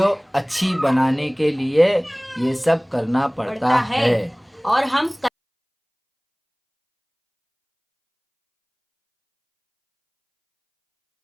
अच्छी बनाने के लिए ये सब करना पड़ता है। और हम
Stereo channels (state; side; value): identical; both; correlation 1.00